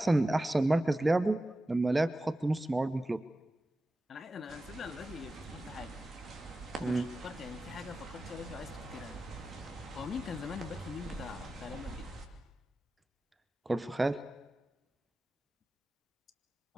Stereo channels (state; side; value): normal; both; correlation 0.94